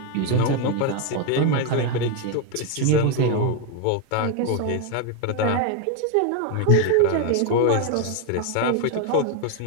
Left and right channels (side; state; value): both; different; correlation 0.01